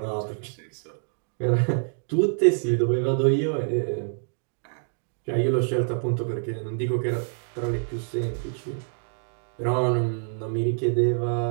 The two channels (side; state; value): left; silent; digital silence